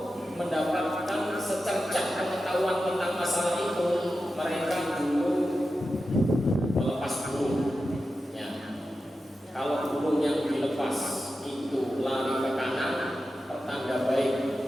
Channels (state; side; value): normal; both; correlation 0.92